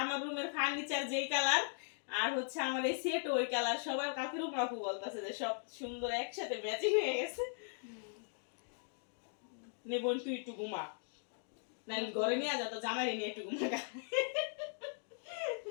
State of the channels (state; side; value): silent; right; digital silence